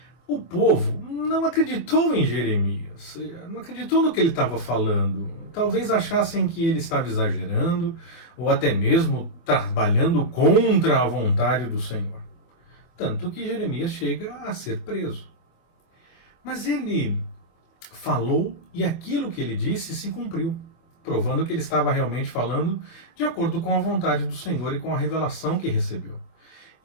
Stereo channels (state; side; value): late; right; 24 ms